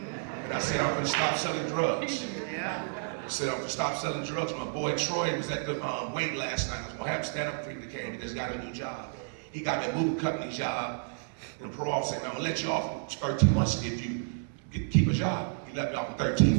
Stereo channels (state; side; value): silent; left; 57 dB below the other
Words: I said, I'm gonna stop selling drugs. Yeah. I said, I'm gonna stop selling drugs. My boy Troy was at the wait last night. I was gonna have him stand up for him. He came, he just got a new job. He got me a moving company job. And the parole officer said, I'm gonna let you off in 13 months if you keep a job. He let me off in